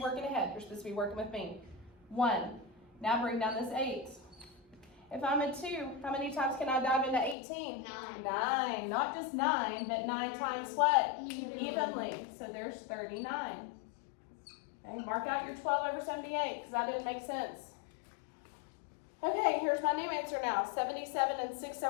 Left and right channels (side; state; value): right; drops out; at 7.4 s